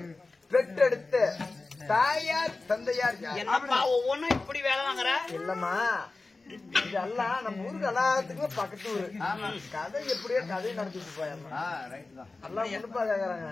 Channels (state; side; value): quieter; right; 3.5 dB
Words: பெற்றெடுத்த தாயார் தந்தையார் யார்? என்னப்பா ஒவ்வொன்னும் இப்படி வேலை வாங்குற? இல்லம்மா, இதெல்லாம் நம்ம ஊருக்கு எல்லாத்துக்குமே பக்கத்து ஊரு. கதை எப்படியோ கதையை நடத்திட்டு போயம்மா. எல்லாம் முன்னுப்பா கேக்குறாங்க.